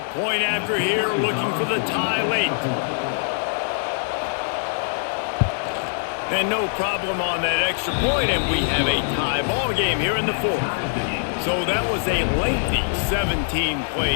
point after here, looking for the tie late. And no problem on that extra point, and we have a tie ball game here in the fourth. So that was a lengthy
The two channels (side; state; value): right; silent; digital silence